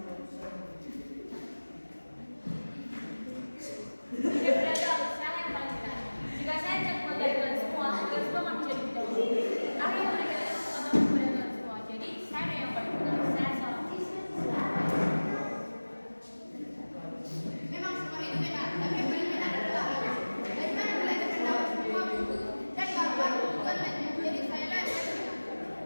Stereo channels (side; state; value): both; inverted; correlation -1.00